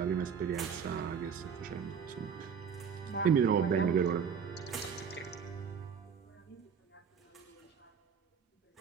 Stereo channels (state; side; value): quieter; left; 6.8 dB